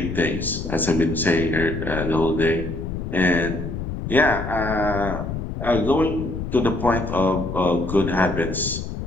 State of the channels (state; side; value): noise; left; rumble, 6 dB below the sound